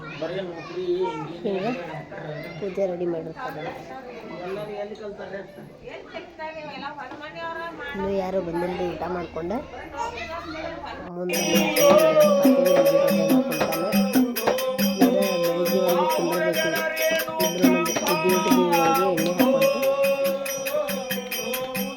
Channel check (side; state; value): both; identical; correlation 1.00